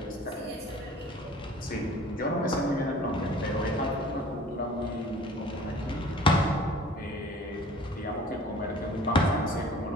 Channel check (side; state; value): both; normal; correlation 0.48